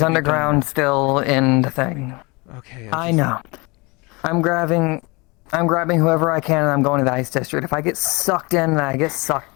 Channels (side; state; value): right; quieter; 27.1 dB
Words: underground still in the thing. Okay. I know. I'm grabbing whoever I can and I'm going to the Ice District. If I get sucked in, I get